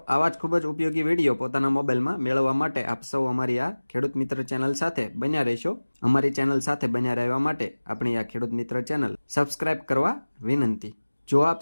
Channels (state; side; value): inverted; both; correlation -1.00